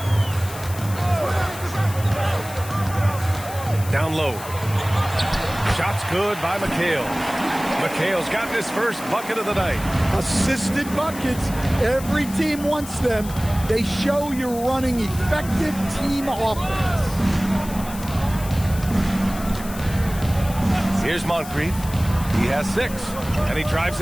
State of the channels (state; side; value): noise; left; hiss, 14 dB below the sound